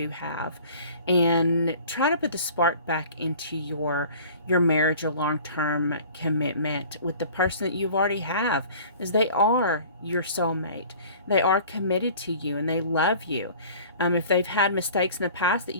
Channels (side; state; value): both; inverted; correlation -0.46